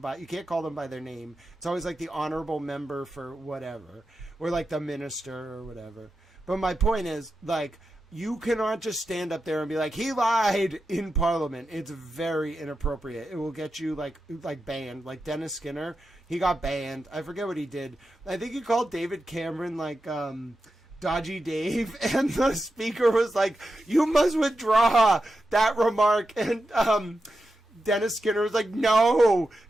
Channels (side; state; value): both; normal; correlation 0.89